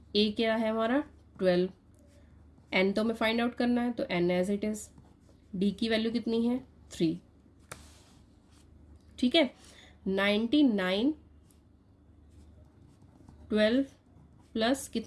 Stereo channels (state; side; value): identical; both; correlation 1.00